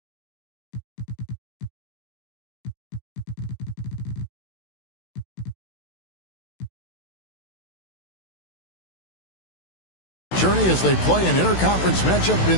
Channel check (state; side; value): late; right; 16 ms